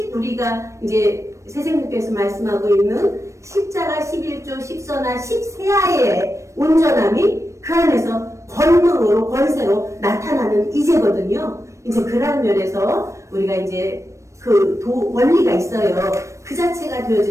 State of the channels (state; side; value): late; left; 0.15 ms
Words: 우리가 이제 세생님께서 말씀하고 있는 십자가 11조 10서나 10세하의 온전함이 그 안에서 권능으로 권세로 나타나는 이제거든요. 이제 그런 면에서 우리가 이제 그 원리가 있어요. 그 자체가